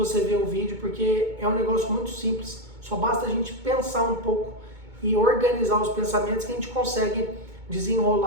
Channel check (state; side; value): late; left; 2.2 ms